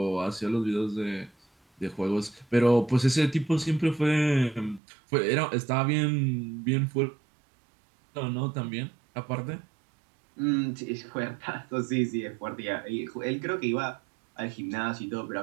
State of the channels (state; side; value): drops out; left; at 4.8 s